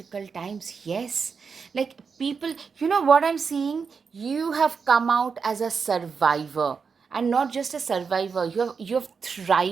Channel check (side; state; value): left; quieter; 5.6 dB